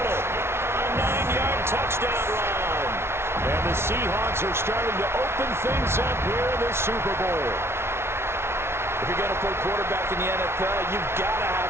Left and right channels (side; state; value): left; late; 0.12 ms